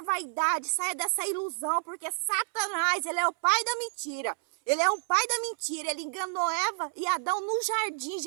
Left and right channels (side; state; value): left; silent; 58 dB below the other